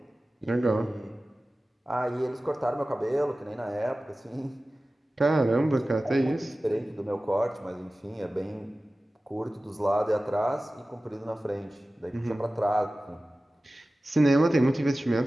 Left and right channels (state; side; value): normal; both; correlation 0.96